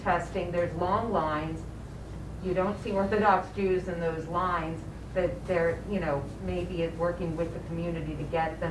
testing, there's long lines. You don't see Orthodox Jews in those lines, that they're, you know, maybe it's working with the community to get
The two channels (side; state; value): both; identical; correlation 1.00